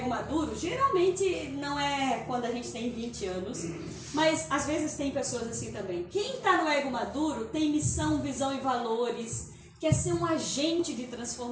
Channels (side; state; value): both; identical; correlation 1.00